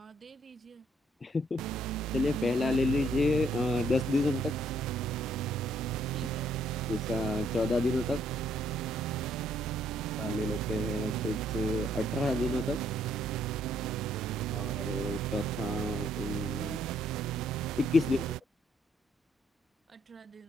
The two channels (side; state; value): both; normal; correlation 0.68